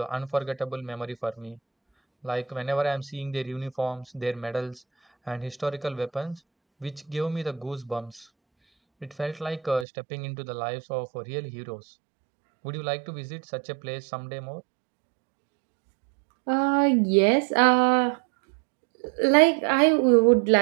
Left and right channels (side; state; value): left; drops out; at 9.9 s